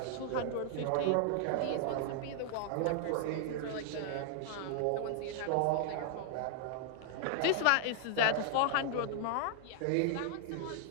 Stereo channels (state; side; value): different; both; correlation 0.00